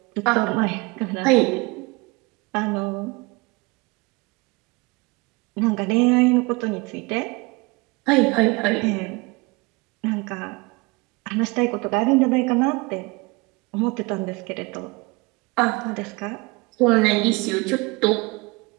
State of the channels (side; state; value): left; quieter; 25.8 dB